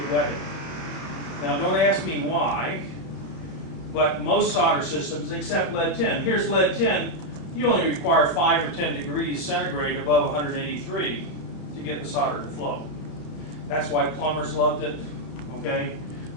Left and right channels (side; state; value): right; late; 31 ms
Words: wetting. Now don't ask me why, but most solder systems, except lead tin. Here's lead tin. You only require 5 or 10 degrees centigrade above 183 to get the solder to flow. That's why plumbers loved it, okay?